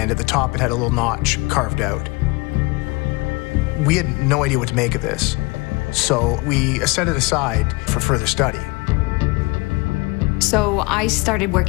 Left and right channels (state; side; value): quieter; right; 25.7 dB